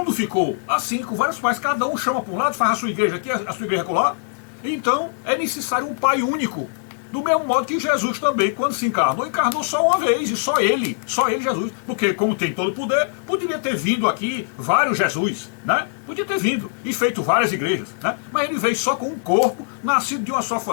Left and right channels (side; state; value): right; silent; 64 dB below the other